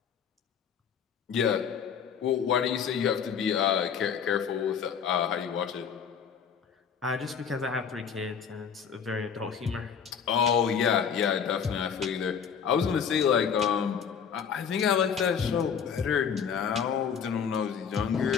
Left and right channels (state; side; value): quieter; right; 7.2 dB